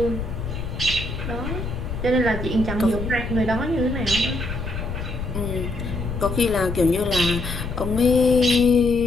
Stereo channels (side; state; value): left; noise; rumble, 6 dB below the sound